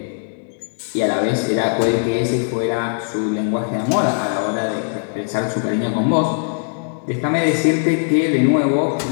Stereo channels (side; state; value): right; silent; digital silence